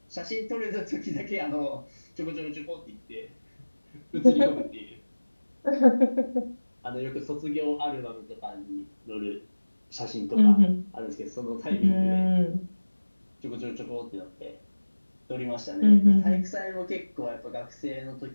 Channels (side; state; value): both; inverted; correlation -1.00